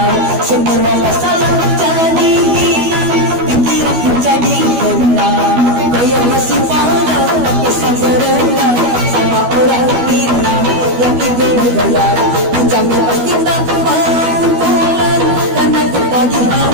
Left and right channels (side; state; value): left; late; 12 ms